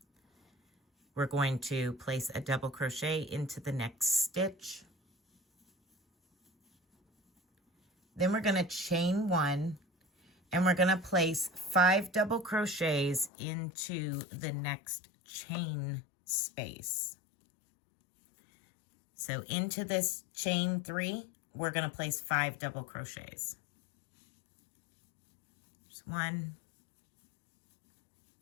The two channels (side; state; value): right; drops out; at 13.3 s